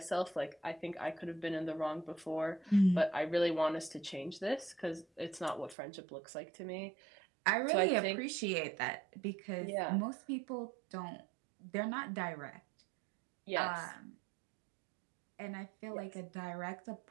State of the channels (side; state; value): left; drops out; at 5.8 s